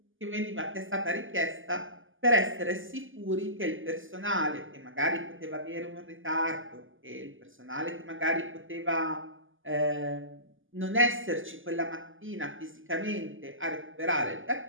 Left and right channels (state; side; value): late; left; 0.58 ms